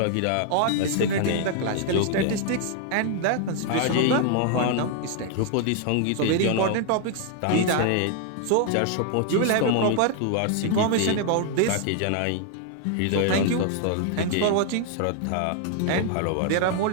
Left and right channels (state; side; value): different; both; correlation 0.00